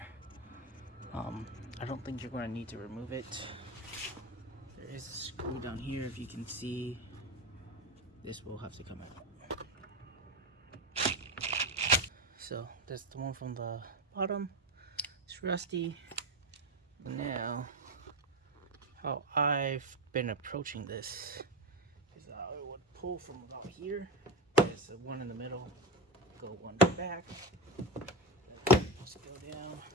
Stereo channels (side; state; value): both; normal; correlation 0.16